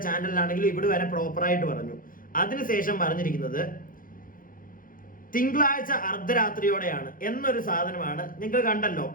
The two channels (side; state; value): right; late; 0.40 ms